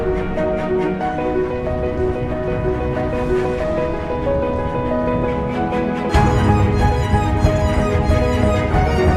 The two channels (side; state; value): both; identical; correlation 1.00